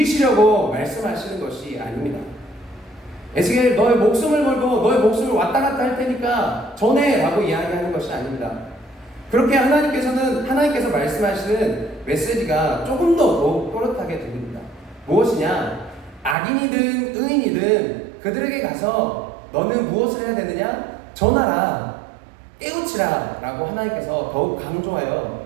말씀하시는 것이 아닙니다. 에스겔, 너의 목숨을 걸고 너의 목숨을 왔다 갔다 할 테니까 전해 라고 이야기하는 것이 아닙니다. 그렇게 하나님께서 말씀하시는 메시지가 조금 더 더욱 또렷하게 들립니다. 무엇이냐? 악인이든 의인이든 그들에게 가서 너는 무엇을 해야 되느냐? 전하라, 깨우치라 라고 하나님께서 더욱 강조하여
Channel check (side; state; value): left; drops out; at 16.4 s